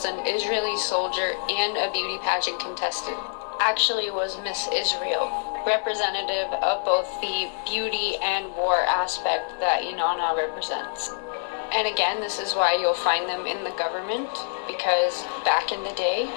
an Israeli soldier and a beauty pageant contestant. Actually was Miss Israel, representative of both the beauty and war aspect that Inanna represents. And again, this is why you'll find them in the government, because back in the day,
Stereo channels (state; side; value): silent; right; 58 dB below the other